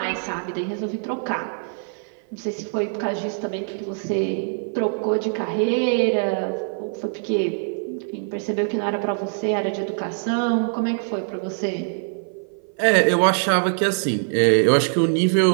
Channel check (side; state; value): left; silent; 55 dB below the other